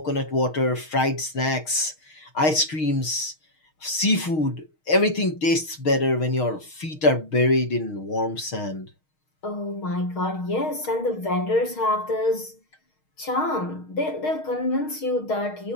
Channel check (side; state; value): right; late; 6.4 ms